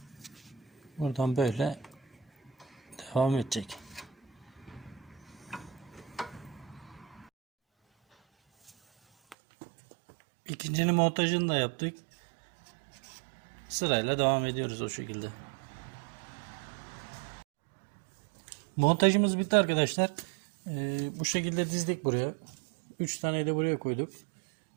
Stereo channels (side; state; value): left; drops out; at 9.3 s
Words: Buradan böyle devam edecek. İkincinin montajını da yaptık. Sırayla devam ediyoruz o şekilde. Montajımız bitti arkadaşlar. Bu şekilde dizdik buraya. 3 tane de buraya koyduk.